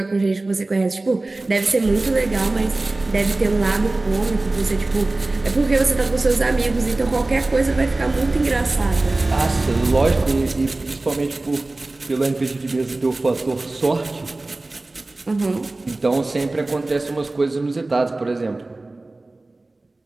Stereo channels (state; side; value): quieter; left; 3.0 dB